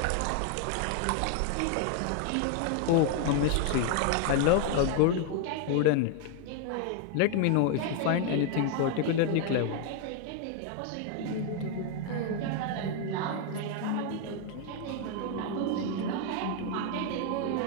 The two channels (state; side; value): different; both; correlation 0.00